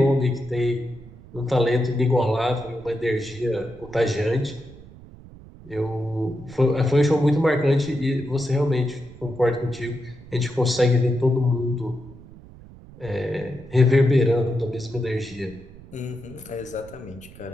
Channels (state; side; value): noise; right; rumble, 19 dB below the sound